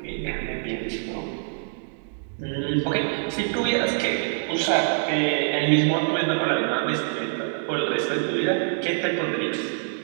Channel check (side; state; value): left; silent; digital silence